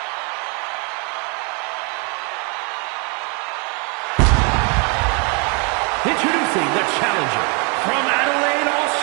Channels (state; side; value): quieter; left; 32.9 dB